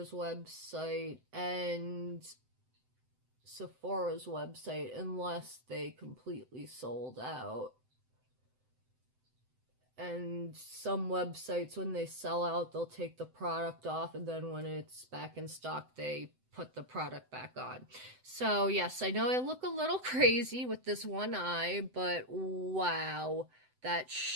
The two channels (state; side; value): late; left; 7.9 ms